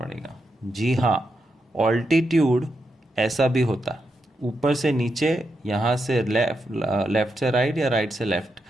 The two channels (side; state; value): both; normal; correlation 0.85